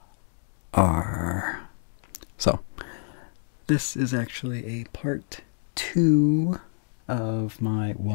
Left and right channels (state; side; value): silent; right; digital silence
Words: So, this is actually a part 2 of my